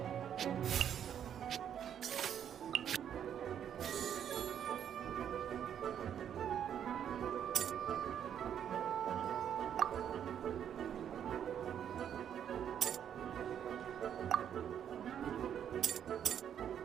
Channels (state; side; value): quieter; left; 9.2 dB